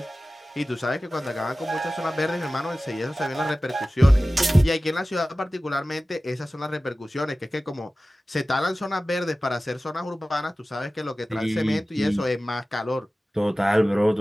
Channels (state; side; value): normal; both; correlation 0.96